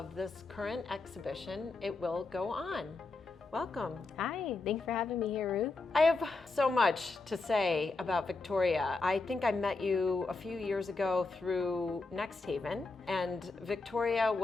this current exhibition, It Will Go On. Welcome. Hi, thanks for having me here, Ruth. I have so much to say about Victoria. I think I met you a few years ago through Next Haven, and Victoria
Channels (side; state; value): right; quieter; 3.6 dB